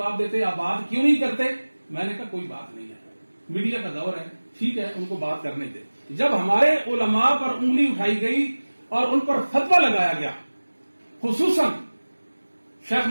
دیتے، آپ بات کیوں نہیں کرتے؟ میں نے کہا کوئی بات نہیں ہے، میڈیا کا دور ہے، ٹھیک ہے ان کو بات کرنے دے۔ جب ہمارے علماء پر انگلی اٹھائی گئی اور ان پر فتویٰ لگایا گیا، خصوصاً شیخ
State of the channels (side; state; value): both; inverted; correlation -1.00